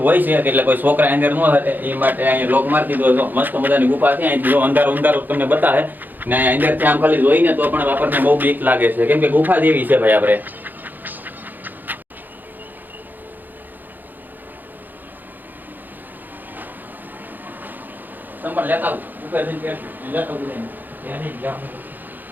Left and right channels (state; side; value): late; left; 0.087 ms